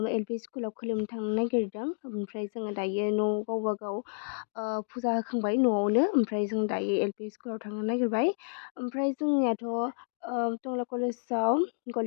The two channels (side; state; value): right; silent; digital silence